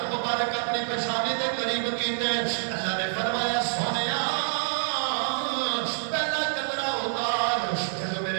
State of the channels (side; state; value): left; silent; 60 dB below the other